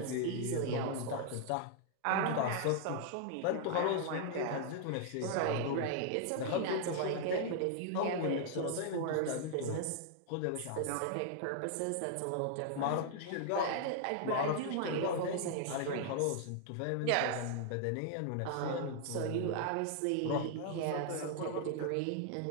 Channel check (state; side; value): different; both; correlation 0.00